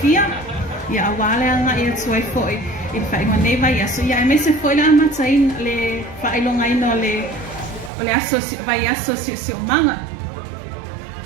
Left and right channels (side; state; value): left; drops out; at 7.9 s